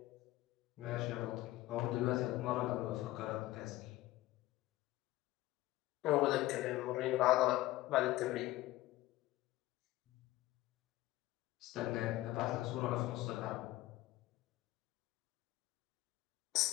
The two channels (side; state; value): right; quieter; 17.0 dB